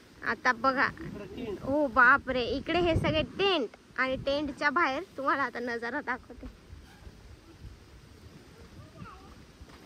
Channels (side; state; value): both; identical; correlation 1.00